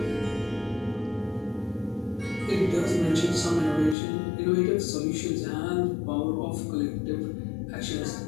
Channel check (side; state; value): right; drops out; at 4.0 s